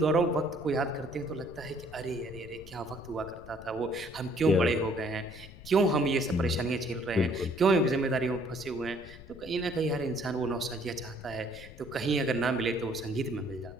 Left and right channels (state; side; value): noise; left; rumble, 17 dB below the sound